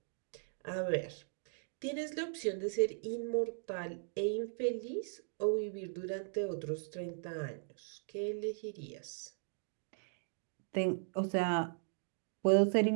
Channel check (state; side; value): silent; left; digital silence